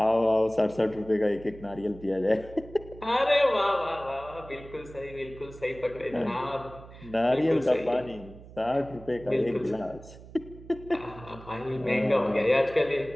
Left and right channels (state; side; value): noise; right; hum, 18 dB below the sound